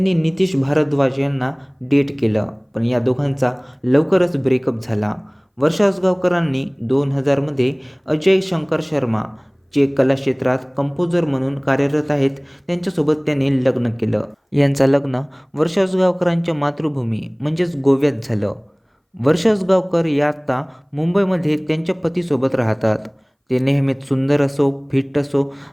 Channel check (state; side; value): identical; both; correlation 1.00